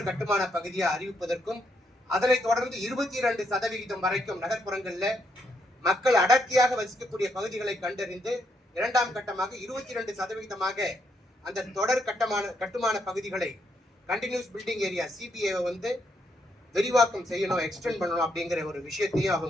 கட்டுமான பகுதியா அறிவிப்பதற்கும், அதனை தொடர்ந்து 22% வரைக்கும் நகர்ப்புறங்கள்ல மக்கள் அடர்த்தியாக வசிக்கக்கூடிய பகுதிகளை கண்டறிந்து 2ஆம் கட்டமாக 22% அந்த தொடர் கட்டுமான பகுதிகளை கண்டினியூஸ் பில்டிங் ஏரியா சிபிஏ விரிவாக்கம் செய்யணும், எக்ஸ்டெண்ட் பண்ணணும் அப்படிங்கிற ஒரு விஷயத்தையும்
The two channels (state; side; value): normal; both; correlation 0.76